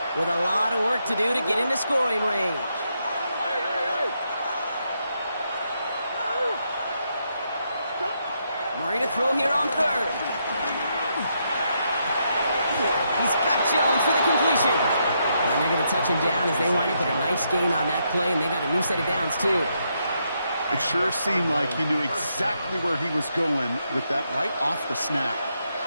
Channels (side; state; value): both; inverted; correlation -0.79